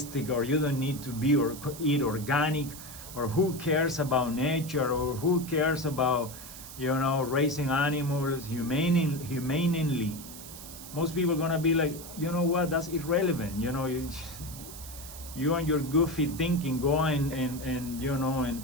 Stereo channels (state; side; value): noise; right; hiss, 13 dB below the sound